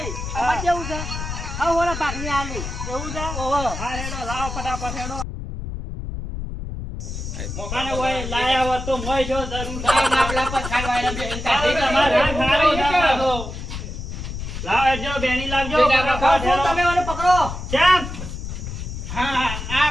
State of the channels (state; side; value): noise; left; rumble, 7 dB below the sound